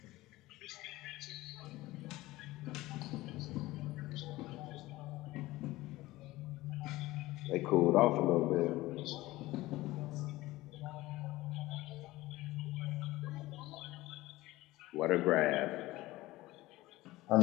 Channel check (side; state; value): right; quieter; 18.3 dB